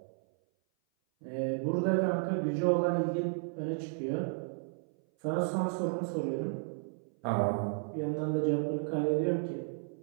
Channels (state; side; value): silent; left; 56 dB below the other